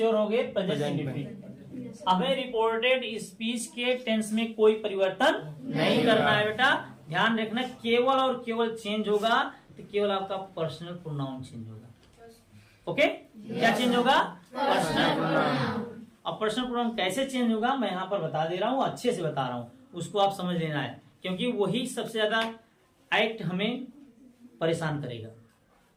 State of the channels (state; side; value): identical; both; correlation 1.00